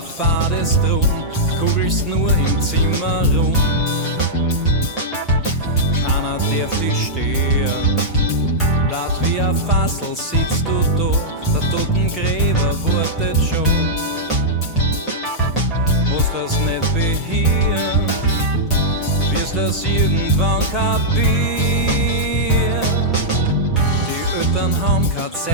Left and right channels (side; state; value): both; normal; correlation -0.09